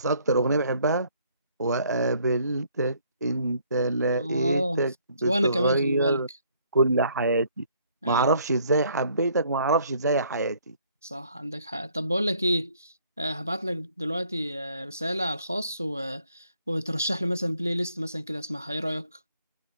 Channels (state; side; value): inverted; both; correlation -0.64